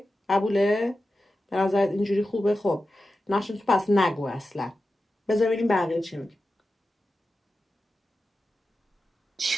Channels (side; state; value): both; normal; correlation 0.92